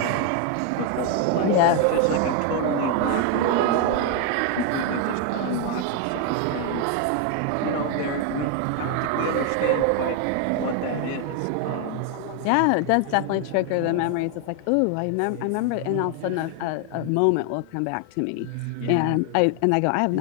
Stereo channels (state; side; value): different; both; correlation 0.01